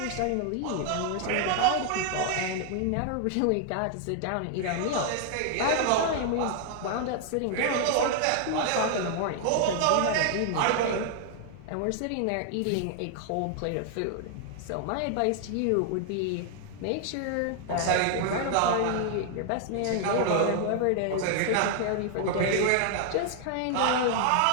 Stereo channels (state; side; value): different; both; correlation 0.00